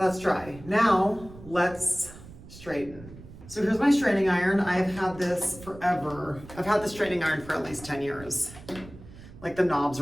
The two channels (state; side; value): noise; right; rumble, 17 dB below the sound